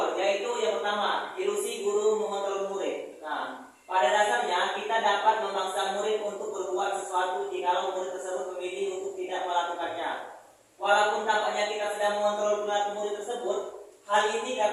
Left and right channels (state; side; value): identical; both; correlation 1.00